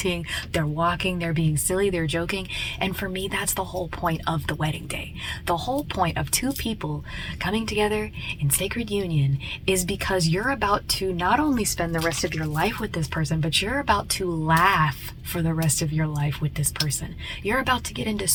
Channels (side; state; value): both; identical; correlation 1.00